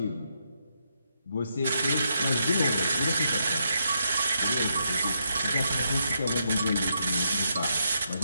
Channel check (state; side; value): inverted; both; correlation -0.79